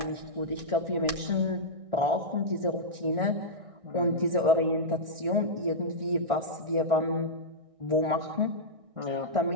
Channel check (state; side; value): late; left; 1.6 ms